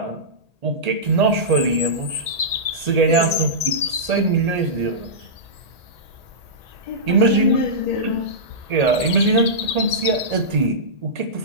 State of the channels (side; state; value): left; late; 1.8 ms